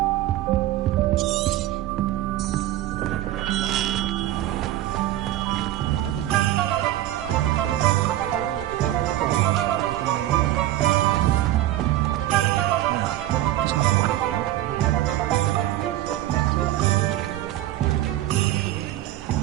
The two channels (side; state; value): left; quieter; 14.2 dB